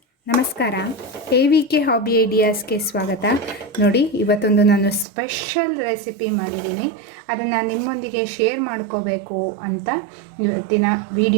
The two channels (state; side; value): drops out; left; at 5.1 s